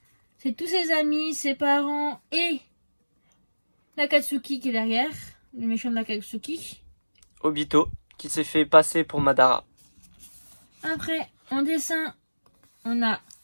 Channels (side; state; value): both; inverted; correlation -1.00